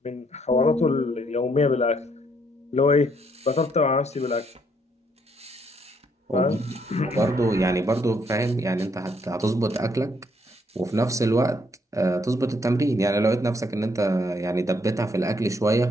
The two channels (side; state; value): both; normal; correlation 0.71